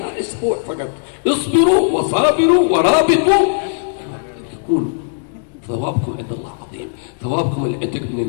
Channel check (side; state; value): right; silent; digital silence